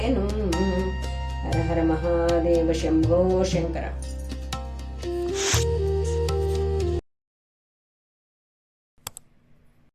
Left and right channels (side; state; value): both; identical; correlation 1.00